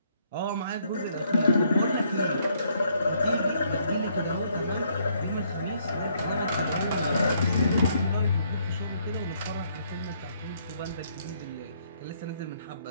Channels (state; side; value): inverted; both; correlation -0.69